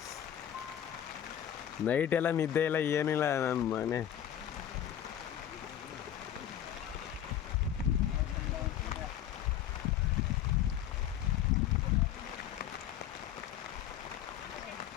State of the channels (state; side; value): quieter; right; 10.5 dB